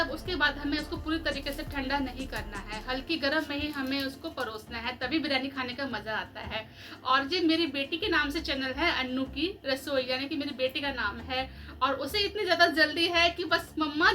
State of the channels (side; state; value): both; identical; correlation 1.00